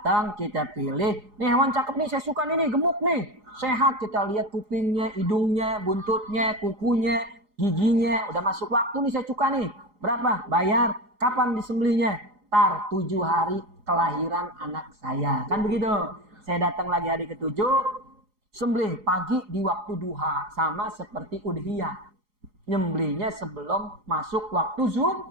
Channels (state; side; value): late; left; 4.8 ms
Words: kita pilih. Nih hewan cakep nih, saya suka nih, gemuk nih. Sehat, kita lihat kupingnya, hidungnya, buntutnya, kukunya, giginya. Udah masuk waktu nih, saya suka nih. Berapa? Bayar. Kapan disembelihnya? Tar 7 hari kelahiran anak saya. Kan begitu. Saya datang lagi hari ke-7, sembelih pagi di waktu duha. Sama seperti udhiyah. Nyembelihnya sebelum masuk waktu